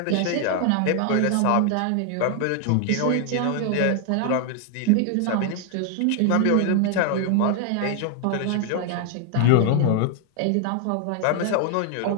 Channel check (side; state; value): both; different; correlation 0.00